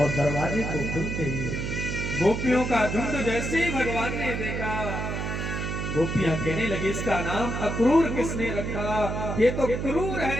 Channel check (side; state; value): right; noise; hum, 3 dB below the sound